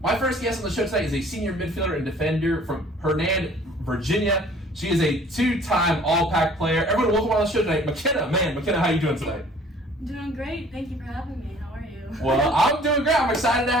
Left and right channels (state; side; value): normal; both; correlation 0.53